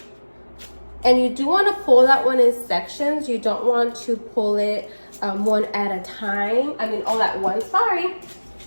And you do wanna pull that one in sections. You don't want to pull it one at a time. I mean, all at once, sorry.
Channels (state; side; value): inverted; both; correlation -1.00